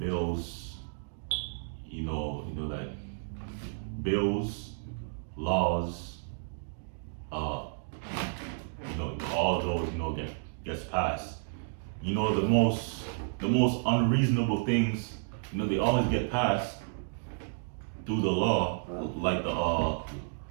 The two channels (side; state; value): left; silent; digital silence